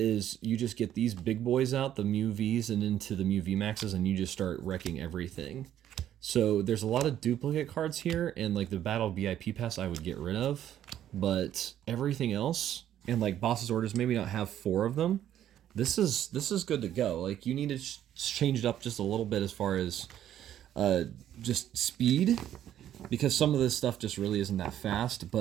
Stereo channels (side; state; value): left; quieter; 11.2 dB